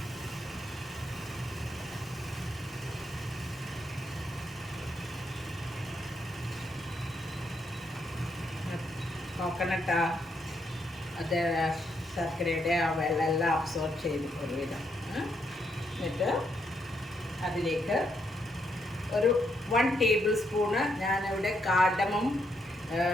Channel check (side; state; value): both; normal; correlation 0.77